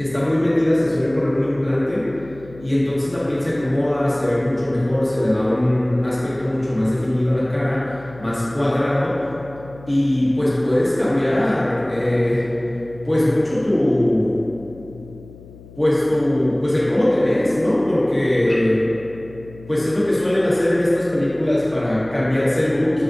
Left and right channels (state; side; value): noise; left; hum, 20 dB below the sound